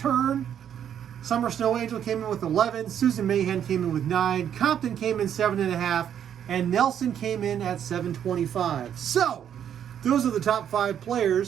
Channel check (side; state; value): left; quieter; 9.3 dB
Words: Summer Snow Angel came in with 11. Susan Mayhem came in with 9. Compton came in 7.5. And Nelson came in at 7.25. So, those are the top 5